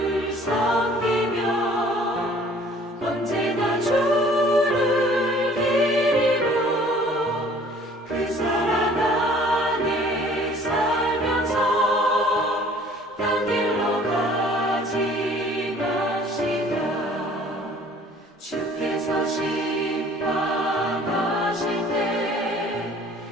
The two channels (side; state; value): both; normal; correlation 0.53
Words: 섬기며 언제나 주를 기리고 그 사랑 안에 살면서 딴 길로 가지 맙시다. 주께서 심판하실 때